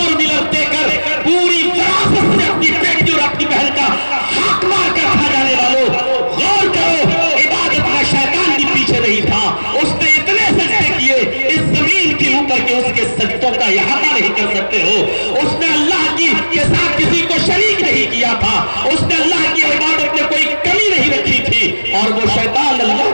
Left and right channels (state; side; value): inverted; both; correlation -1.00